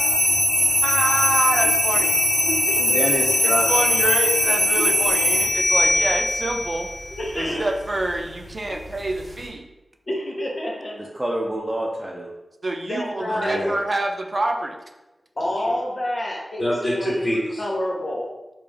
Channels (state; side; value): normal; both; correlation 0.96